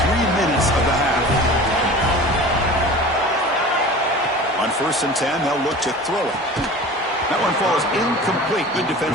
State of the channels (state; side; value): normal; both; correlation 0.38